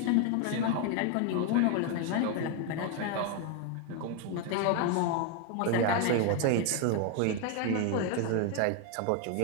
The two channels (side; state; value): both; different; correlation 0.01